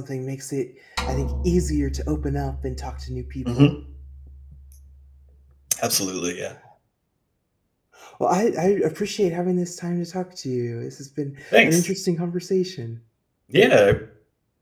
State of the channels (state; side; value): identical; both; correlation 1.00